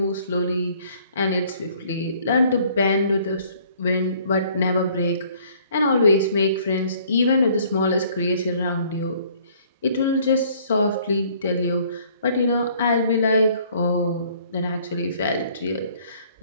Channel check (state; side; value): inverted; both; correlation -0.59